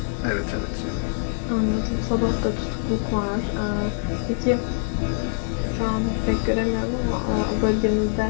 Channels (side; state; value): right; silent; digital silence